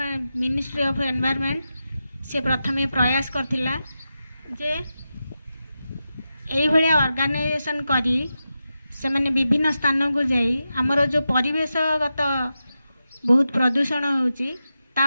मिनिस्ट्री ऑफ एनवायरमेंट से प्रथमे प्रयास करथिला जे यही भाया ऑर्गेनाइजेशन करी से माने विभिन्न स्थान को जाई आमर जो परिवेशगत बहुत प्रदूषण होची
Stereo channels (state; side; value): inverted; both; correlation -0.90